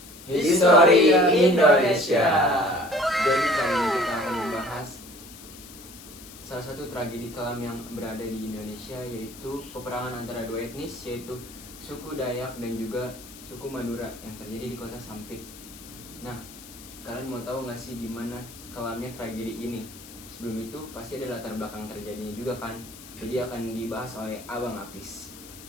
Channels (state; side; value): noise; left; hiss, 17 dB below the sound